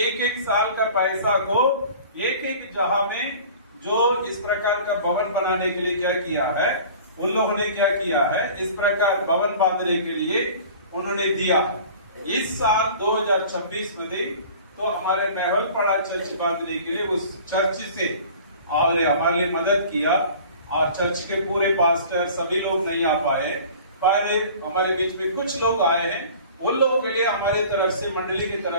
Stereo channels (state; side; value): inverted; both; correlation -0.44